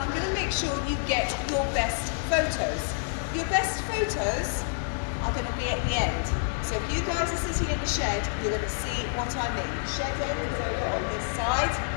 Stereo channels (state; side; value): silent; right; digital silence